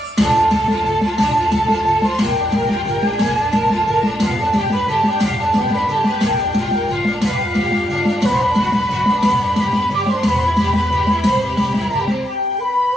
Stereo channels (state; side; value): normal; both; correlation 0.81